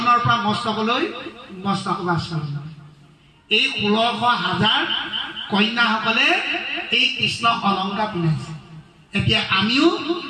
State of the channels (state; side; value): identical; both; correlation 1.00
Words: পৰা মস্তকলৈ মস্তক বা চৰণ। এই ১৬০০,০০০ কন্যাসকলে এই কৃষ্ণ অলংকাৰ পিন্ধাইছে। এতিয়া আমিও